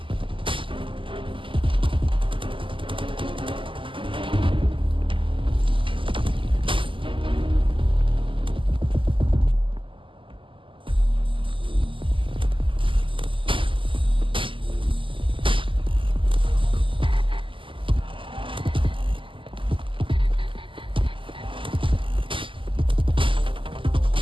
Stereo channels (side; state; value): left; late; 0.25 ms